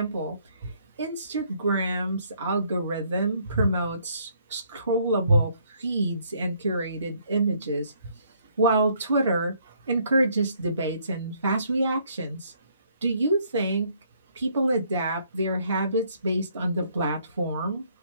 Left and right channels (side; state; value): both; inverted; correlation -0.66